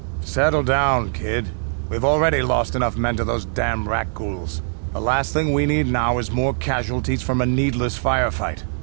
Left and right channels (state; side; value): silent; left; digital silence